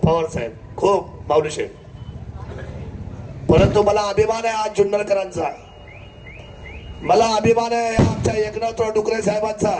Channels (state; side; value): identical; both; correlation 1.00